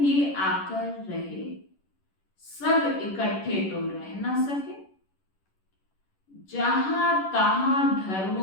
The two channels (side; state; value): right; late; 11 ms